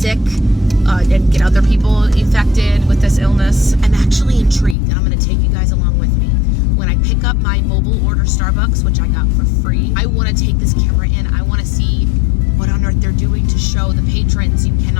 and get other people infected with this illness. I'm actually intrigued, and I'm going to take you guys along with me. When I pick up my mobile order Starbucks, which I got for free, I want to take this camera in. I want to see what on earth they're doing to show the patrons you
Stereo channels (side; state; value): right; drops out; at 4.8 s